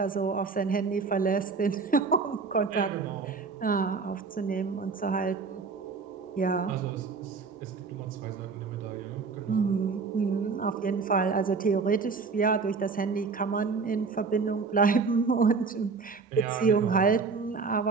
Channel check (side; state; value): left; quieter; 4.8 dB